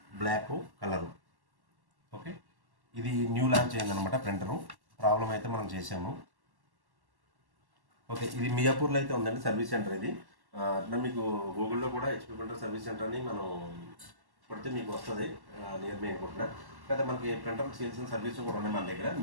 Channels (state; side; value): late; left; 1.1 ms